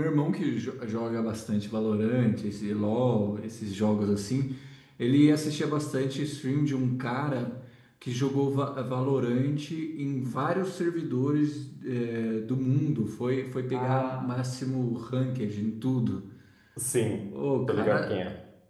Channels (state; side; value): identical; both; correlation 1.00